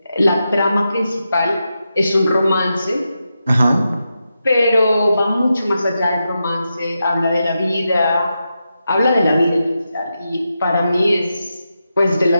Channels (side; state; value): both; inverted; correlation -0.88